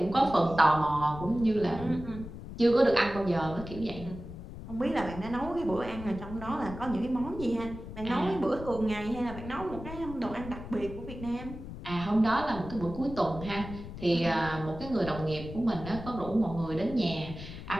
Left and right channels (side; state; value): left; noise; rumble, 11 dB below the sound